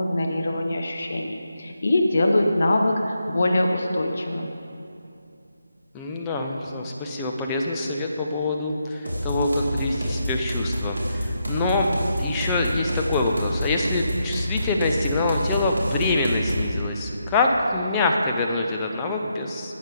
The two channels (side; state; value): both; inverted; correlation -0.80